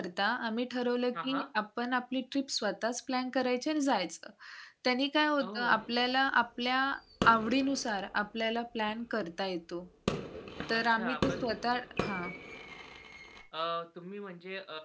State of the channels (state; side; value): identical; both; correlation 1.00